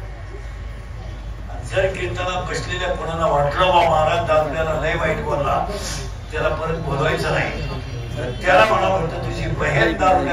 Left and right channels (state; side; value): identical; both; correlation 1.00